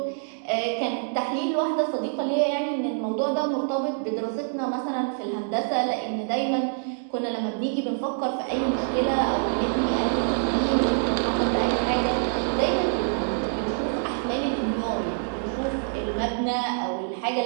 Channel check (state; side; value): silent; left; digital silence